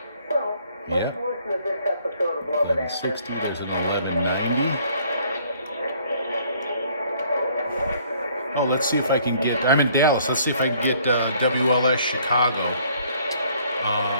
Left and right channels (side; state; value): both; inverted; correlation -0.61